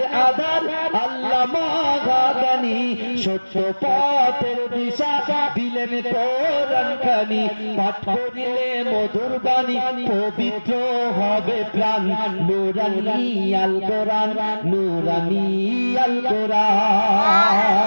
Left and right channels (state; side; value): inverted; both; correlation -1.00